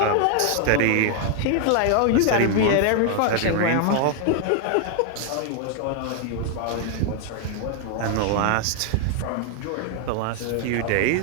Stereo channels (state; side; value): different; both; correlation 0.00